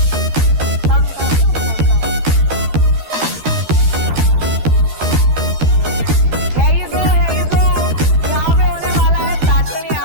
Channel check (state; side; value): late; left; 13 ms